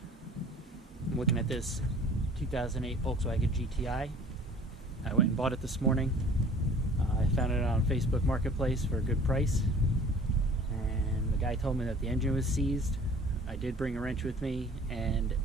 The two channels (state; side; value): normal; both; correlation 0.49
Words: I'm looking at this 2008 Volkswagen GTI. I went and bought it this morning. I found it on Facebook Marketplace for a good price. And the guy told me that the engine was seized. I did bring a wrench with me, and